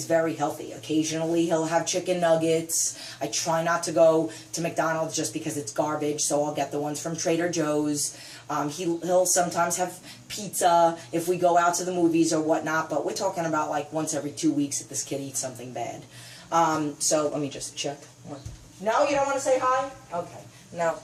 very healthy. Occasionally he'll have chicken nuggets. I try not to go to McDonald's just because it's garbage. So I'll get the ones from Trader Joe's. He'll sometimes have pizza if we go out to the movies or whatnot. But we're talking about like once every 2 weeks that this kid eats something bad. So let me just check. No, you don't want to say hi? Okay. No,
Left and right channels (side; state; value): both; identical; correlation 1.00